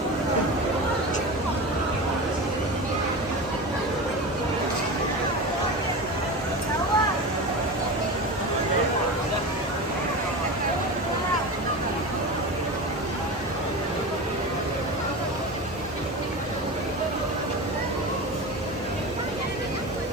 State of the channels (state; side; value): normal; both; correlation 0.26